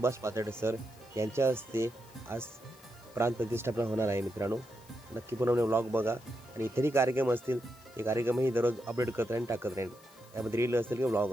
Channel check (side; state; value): left; noise; hiss, 25 dB below the sound